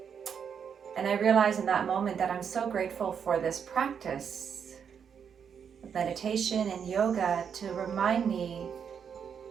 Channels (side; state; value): left; quieter; 7.3 dB